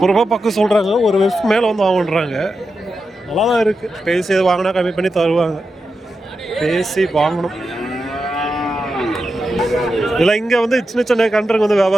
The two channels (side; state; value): both; normal; correlation 0.89